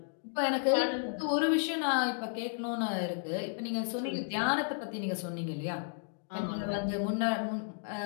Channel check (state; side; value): silent; right; digital silence